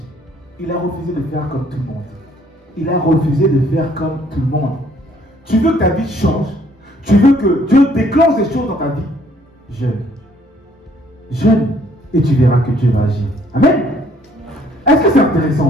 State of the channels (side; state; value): both; normal; correlation 0.63